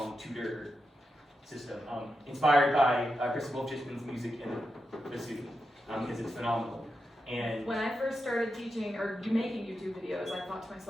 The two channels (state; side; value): normal; both; correlation 0.88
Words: tutor system, inspired by Chris Wolfchisman's music and bassoon, because it's phenomenal. And When I first started teaching or making YouTube videos, I thought to